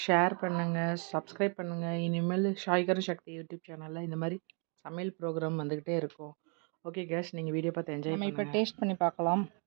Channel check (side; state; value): left; quieter; 38.5 dB